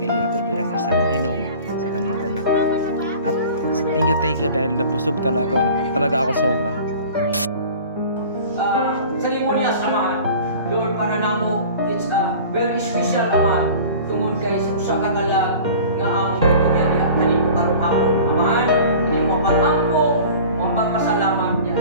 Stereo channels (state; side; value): inverted; both; correlation -0.42